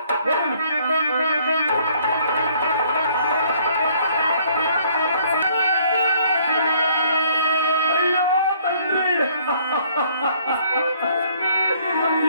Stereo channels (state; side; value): inverted; both; correlation -0.62